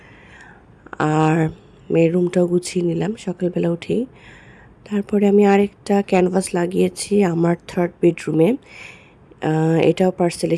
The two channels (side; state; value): both; identical; correlation 1.00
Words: আর মেয়ের রুমটাও গুছিয়ে নিলাম সকালবেলা উঠেই। তারপরে আমি আরেকটা ক্যানভাস লাগিয়েছি আমার থার্ড বেডরুমে। এটাও পার্সেল